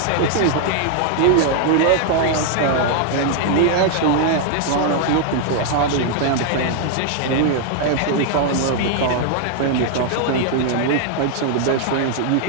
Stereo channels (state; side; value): different; both; correlation 0.00